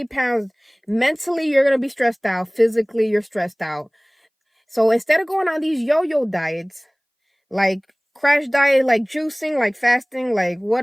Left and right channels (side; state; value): both; identical; correlation 1.00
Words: pounds, mentally, you're going to be stressed out. Physically, you're stressed out. So instead of going on these yo-yo diets, like crash diet, like juicing, like fasting, like